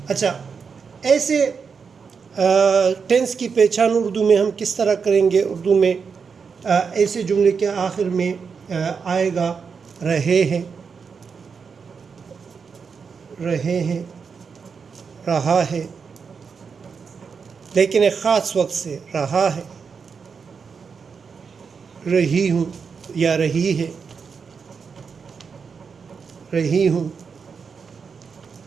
اچھا، ایسے ٹینس کی پہچان اردو میں ہم کس طرح کریں گے؟ اردو میں ایسے جملے کے آخر میں آئے گا رہے ہیں، رہے ہیں، رہا ہے، لیکن ایک خاص وقت سے رہا ہے، رہی ہوں یا رہی ہے، رہی ہوں،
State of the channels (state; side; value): quieter; left; 5.8 dB